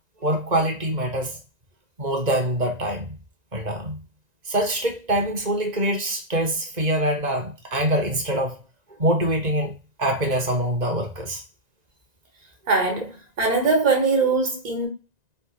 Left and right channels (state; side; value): late; left; 1.9 ms